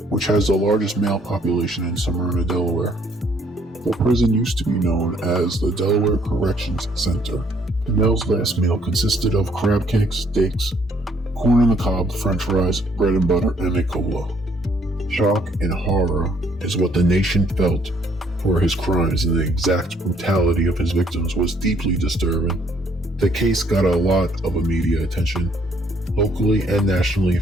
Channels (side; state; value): both; normal; correlation 0.65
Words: which has the largest male population in Smyrna, Delaware. The prison used to be known as the Delaware Corrections Center. Pennell's last meal consisted of crab cakes, steaks, corn on the cob, french fries, bread and butter, and a cola. Shock and horror is what the nation felt for his crimes, and the exact brutality of his victims was deeply disturbing. The case got a lot of media attention, locally and nationally,